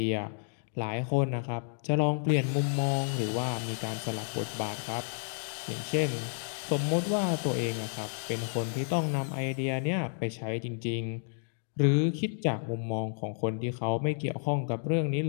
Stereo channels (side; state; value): right; silent; digital silence